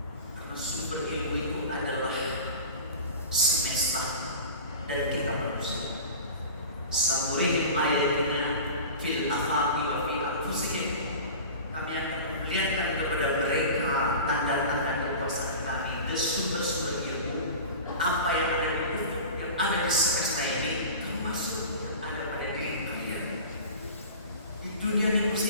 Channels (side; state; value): both; inverted; correlation -0.35